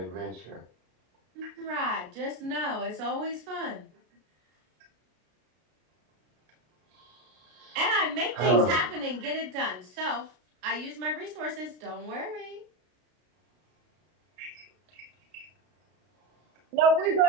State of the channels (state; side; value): late; left; 33 ms